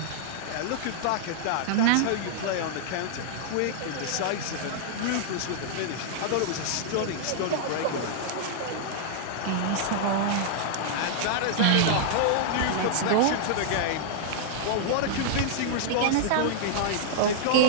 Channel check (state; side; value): different; both; correlation -0.01